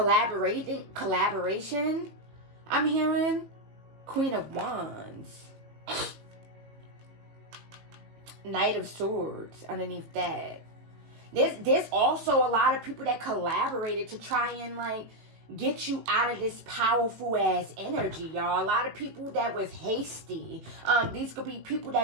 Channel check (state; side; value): late; left; 18 ms